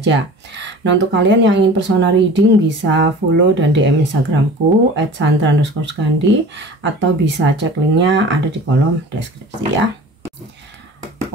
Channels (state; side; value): normal; both; correlation 0.40